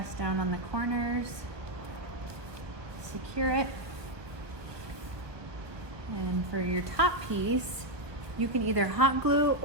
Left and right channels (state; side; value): late; left; 1.2 ms